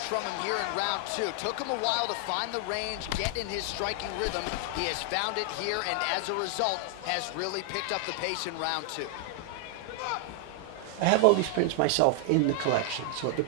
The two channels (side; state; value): both; different; correlation 0.00